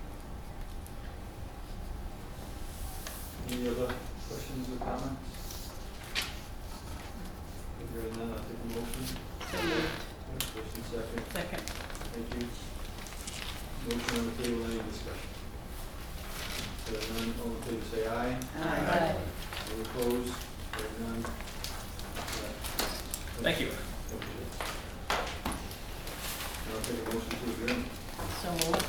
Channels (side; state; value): both; identical; correlation 1.00